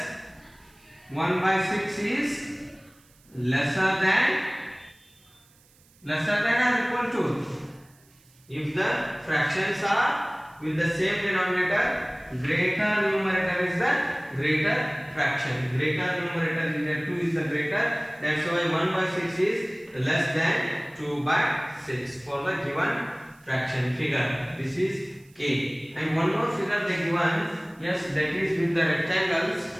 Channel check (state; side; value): noise; right; hiss, 30 dB below the sound